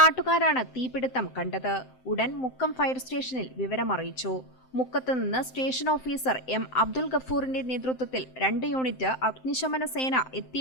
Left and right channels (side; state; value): right; late; 7.7 ms